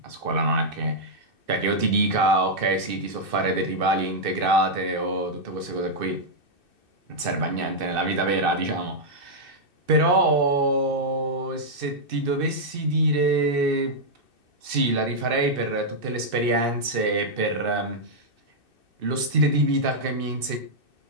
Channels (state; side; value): late; left; 2.6 ms